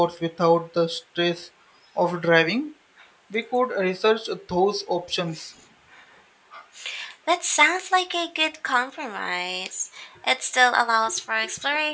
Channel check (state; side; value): identical; both; correlation 1.00